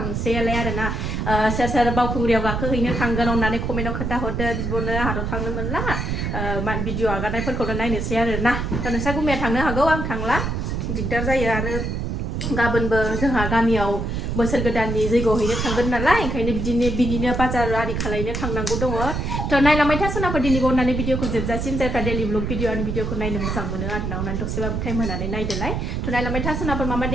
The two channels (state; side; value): noise; right; rumble, 2 dB below the sound